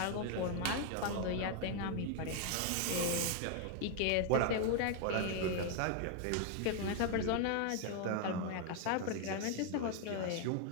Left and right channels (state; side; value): different; both; correlation 0.00